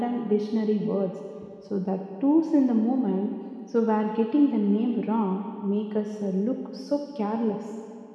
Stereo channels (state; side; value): identical; both; correlation 1.00